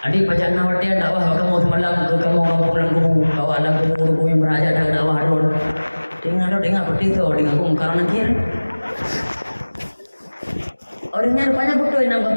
Adik pajan nawati ada apa kamu semalam ke kamu kampung Lang Kubu. Bawa Lang Kubu yang beraja dah dakwah ron. Dengar seperti itu dengan kamu karena kira. Orangnya rupanya betul yang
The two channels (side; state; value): both; inverted; correlation -1.00